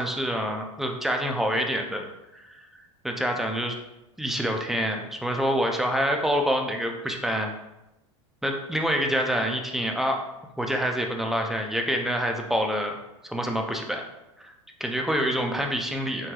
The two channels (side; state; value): both; normal; correlation 0.69